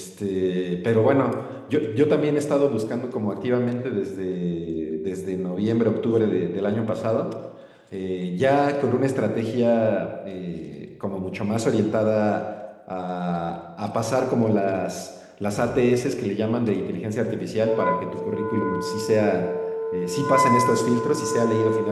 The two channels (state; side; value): identical; both; correlation 1.00